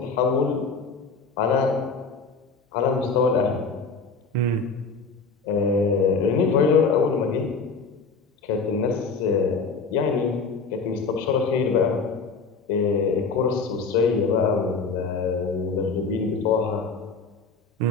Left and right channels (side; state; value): right; quieter; 4.6 dB